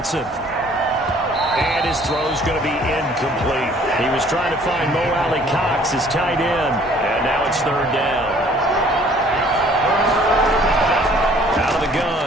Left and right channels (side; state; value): both; normal; correlation 0.57